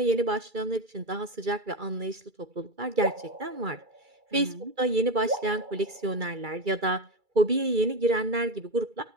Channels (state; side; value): late; left; 2.3 ms